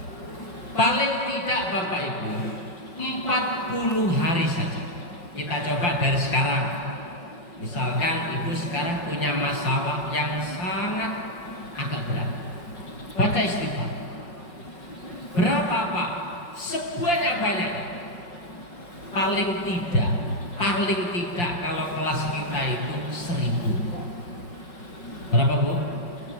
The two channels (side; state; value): right; late; 5.4 ms